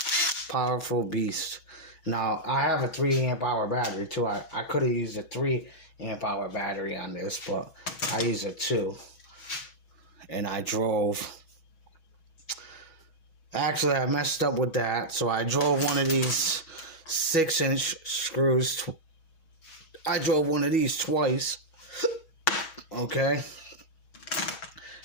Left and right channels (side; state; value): right; late; 6.2 ms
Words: powerful beast. Now, I have a 3 amp hour battery too. I could have used a 3 amp hour battery on this, but I used a 2. And I drove. Actually, I messed up with that. So I drove one of these 6-inch screws. I drove one of these twice. Okay.